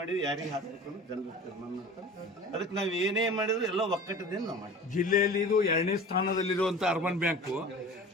ಯಾರಿಗೆ ಹಾಕ್ಬೇಕು ಅನ್ನೋದು ಜನರು ತೀರ್ಮಾನ ಮಾಡ್ತಾರೆ. ಅದಕ್ಕೆ ನಾವು ಏನೇ ಮಾಡಿದ್ರು ಎಲ್ಲ ಒಕ್ಕಟ್ಟದಿಂದ ನಾವು ಮಾಡಿ. ಜಿಲ್ಲೆಯಲ್ಲಿ ಇದು 2ನೇ ಸ್ಥಾನದಲ್ಲಿರುವಂತ ಅರ್ಬನ್ ಬ್ಯಾಂಕು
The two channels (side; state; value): both; normal; correlation 0.39